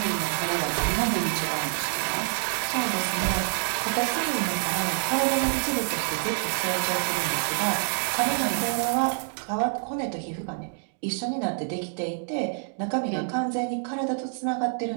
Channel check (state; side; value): silent; left; digital silence